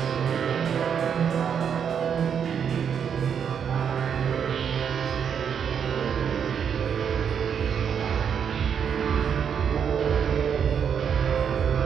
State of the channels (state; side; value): quieter; left; 7.6 dB